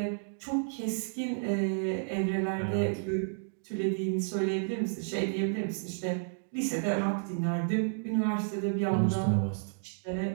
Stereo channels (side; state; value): left; silent; digital silence